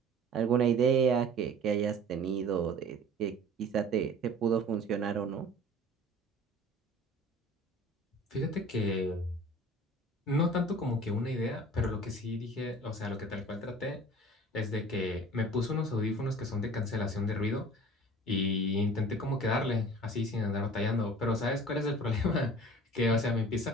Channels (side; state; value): both; normal; correlation 0.44